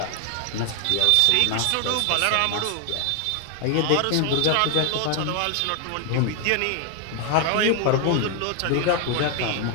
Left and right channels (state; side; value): different; both; correlation 0.00